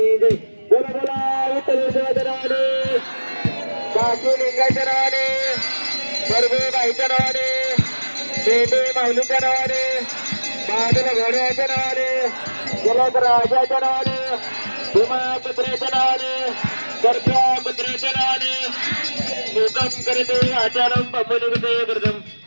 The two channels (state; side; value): inverted; both; correlation -1.00